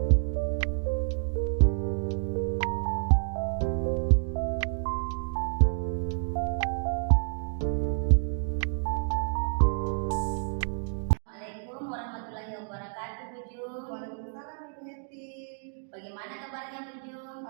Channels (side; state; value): left; silent; 58 dB below the other